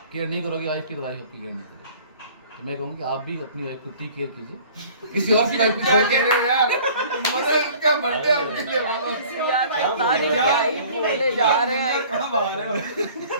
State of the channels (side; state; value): both; inverted; correlation -0.49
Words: केयर नहीं करोगे वाइफ की, तो वाइफ आपकी केयर नहीं करेगी। तो मैं कहूँगी आप भी अपनी वाइफ को टेक केयर कीजिए, किसी और की वाइफ की क्या कह रहे हो यार? मतलब उसका बर्थडे उनके लिए बोलो। यार पता नहीं क्या ही बोले जा रहे हैं। कहाँ बाहर है?